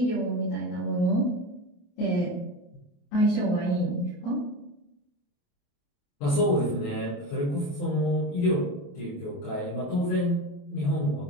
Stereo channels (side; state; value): right; late; 28 ms